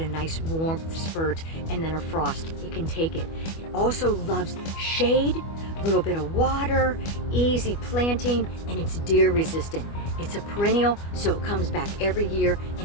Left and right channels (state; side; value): late; right; 25 ms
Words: nice warmth spurt and then a frost, it can take it. It also loves shade, a little bit of water, easy planting, and it's deer resistant. It's a perennial, so it comes back every year